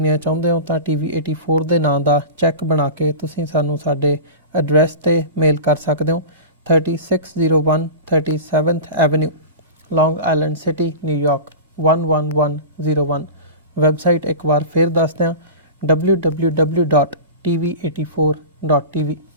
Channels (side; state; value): both; inverted; correlation -0.30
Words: ਚਾਹੁੰਦੇ ਹੋ ਤਾਂ TV84 ਦੇ ਨਾਂ ਦਾ ਚੈੱਕ ਬਣਾ ਕੇ ਤੁਸੀਂ ਸਾਨੂੰ ਸਾਡੇ ਐਡਰੈਸ ਤੇ ਮੇਲ ਕਰ ਸਕਦੇ ਹੋ। 3601 37th ਐਵੇਨਿਊ, ਲੌਂਗ ਆਈਲੈਂਡ ਸਿਟੀ, ਨਿਊਯਾਰਕ 11101। ਵੈਬਸਾਈਟ ਇੱਕ ਵਾਰ ਫਿਰ ਦੱਸ ਦਿਆਂ, www.tv84.tv।